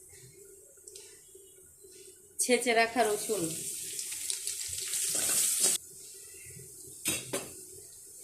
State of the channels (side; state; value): both; identical; correlation 1.00